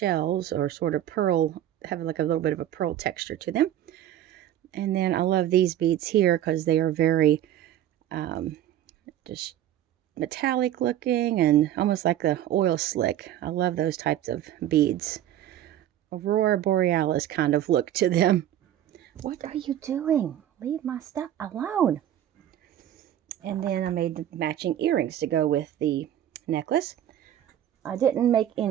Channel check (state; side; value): quieter; left; 11.7 dB